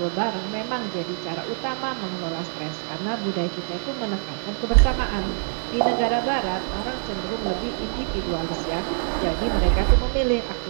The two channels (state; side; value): silent; left; digital silence